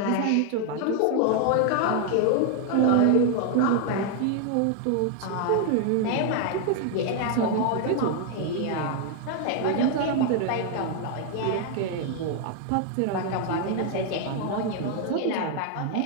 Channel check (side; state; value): both; different; correlation 0.00